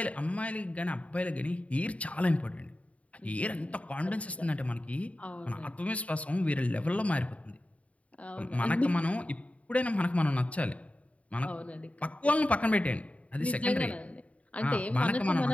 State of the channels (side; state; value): right; late; 0.066 ms